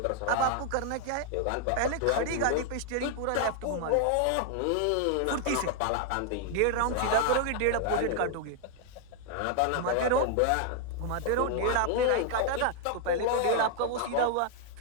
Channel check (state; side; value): different; both; correlation 0.00